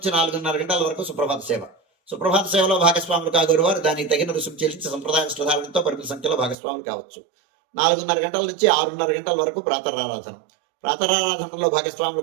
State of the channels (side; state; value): left; drops out; at 6.6 s